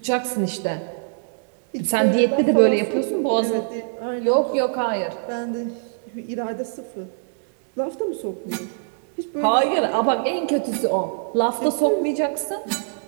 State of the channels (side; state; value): left; silent; digital silence